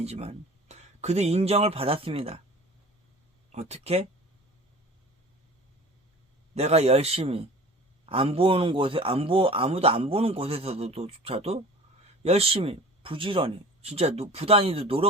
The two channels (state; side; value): normal; both; correlation 0.42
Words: 그도 인정을 받았습니다. 어떻게? 내가 열심히, 아무도 안 보는 곳에서조차도 열심히, 부지런히, 진짜 부단히도